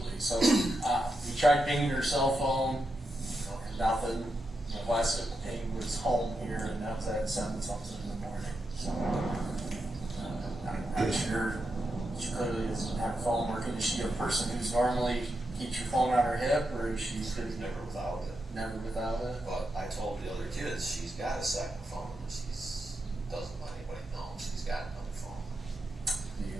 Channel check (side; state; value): both; normal; correlation 0.86